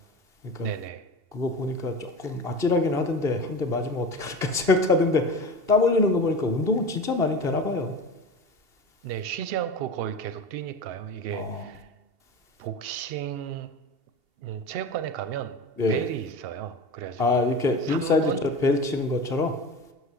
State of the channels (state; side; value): late; left; 2.7 ms